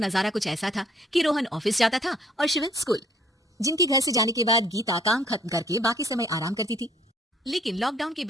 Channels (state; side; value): normal; both; correlation 0.62